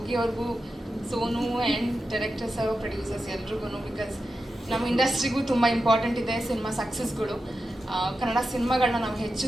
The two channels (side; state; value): both; normal; correlation 0.90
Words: ಅವ್ರಿಗೂ, Sonu and director sir, producers ಎಲ್ರಿಗೂ. ಬಿಕಾಸ್ ನಮ್ಮ ಇಂಡಸ್ಟ್ರಿಗೂ ತುಂಬ ಇಂಪಾರ್ಟೆಂಟ್ ಇದೆ ಸಿನಿಮಾ ಸಕ್ಸಸ್ಗಳು. ಕನ್ನಡ ಸಿನಿಮಾಗಳನ್ನ ನಾವು ಹೆಚ್ಚು